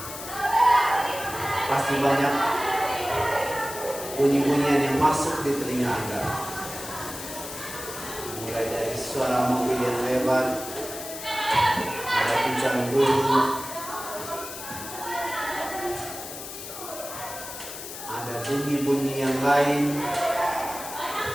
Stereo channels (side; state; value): left; noise; hiss, 10 dB below the sound